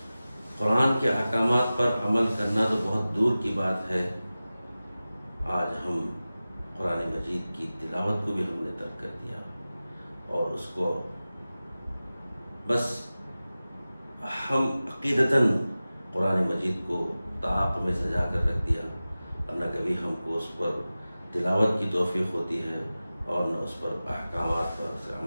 قرآن کے احکامات پر عمل کرنا تو بہت دور کی بات ہے، آج ہم قرآن مجید کی تلاوت کو بھی ہم نے ترک کر دیا اور اس کو بس ہم عقیدتاً قرآن مجید کو طاق میں سجا کر رکھ دیا اور نہ کبھی ہم کو اس پر تلاوت کی توفیق ہوتی ہے اور نہ اس پر احکامات پر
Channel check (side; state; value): both; inverted; correlation -0.96